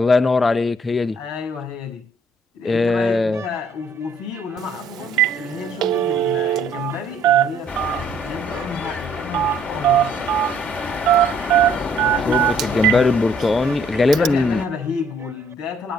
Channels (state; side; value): normal; both; correlation 0.63